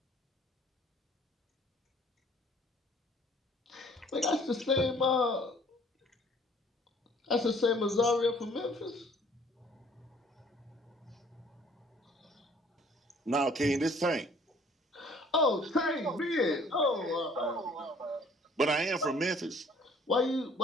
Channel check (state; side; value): normal; both; correlation 0.57